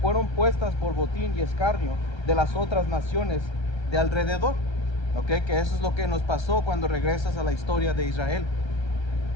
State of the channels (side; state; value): right; late; 1.3 ms